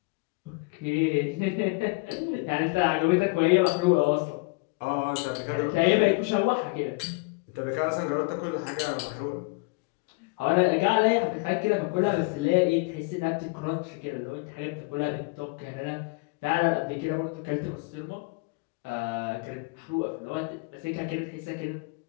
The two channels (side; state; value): right; quieter; 28.7 dB